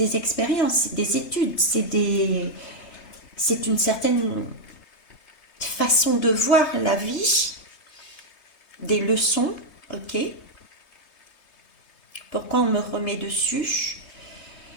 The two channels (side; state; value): right; late; 3.2 ms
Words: expériences, c'est des études, c'est une certaine façon de voir la vie, des leçons, ok. Pourquoi on me remet dessus?